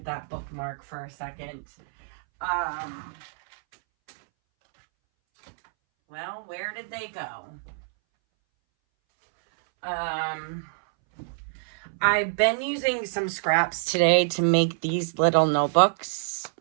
that bookmark for a second. Well, where did they go? I've been using some scraps today to make these little notebooks.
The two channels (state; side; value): silent; left; 60 dB below the other